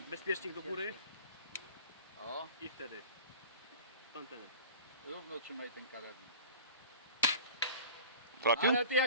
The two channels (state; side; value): inverted; both; correlation -0.40